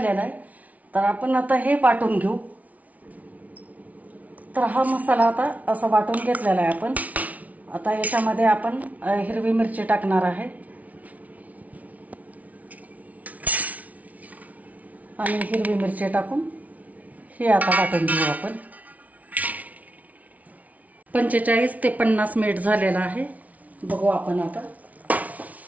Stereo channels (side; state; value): left; late; 0.071 ms